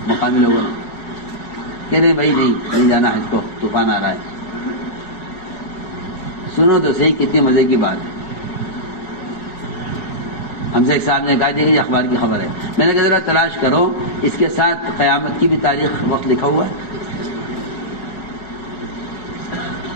مقامی لوگوں نے کہ نہیں بھائی نہیں جانا حج کو، طوفان آ رہا ہے۔ سنو تو صحیح کتنی مزے کی بات ہے۔ ہم سے ایک صاحب نے کہا کہ یہ اخبار کی خبر ہے، میں نے کہا ذرا تلاش کرو اس کے ساتھ قیامت کی بھی تاریخ وقت لکھا ہوا ہے،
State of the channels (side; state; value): right; late; 4.9 ms